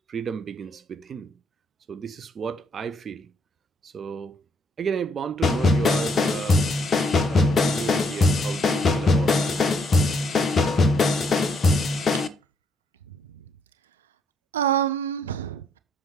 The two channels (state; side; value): normal; both; correlation 0.72